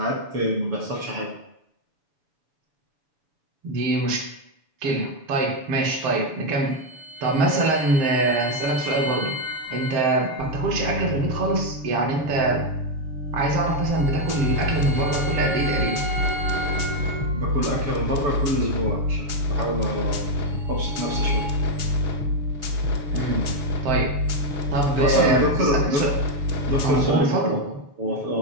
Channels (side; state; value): left; late; 7.0 ms